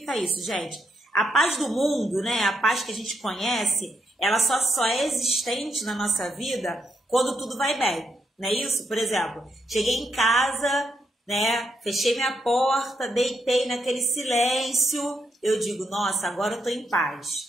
isso, gente? A paz do mundo, né? A paz que a gente conhece, ela só é existente na nossa vida quando tudo vai bem, não é isso? Por exemplo, cheguei em casa, né? Fechei minha porta, deitei naquele silêncio, eu digo, nossa, agora eu tô em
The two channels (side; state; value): both; normal; correlation 0.79